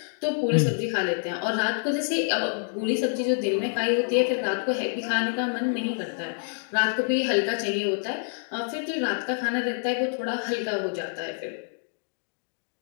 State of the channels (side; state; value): right; silent; digital silence